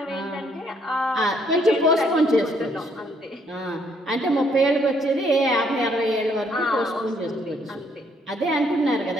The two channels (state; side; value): normal; both; correlation 0.68